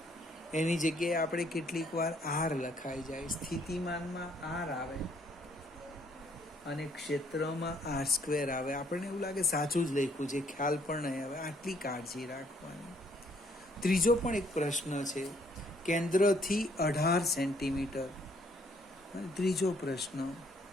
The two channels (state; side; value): normal; both; correlation 0.66